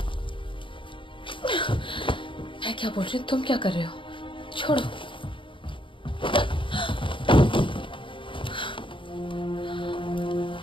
मैं क्या बोल रही हूँ, तुम क्या कर रहे हो? छोड़ो।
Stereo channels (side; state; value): right; late; 0.25 ms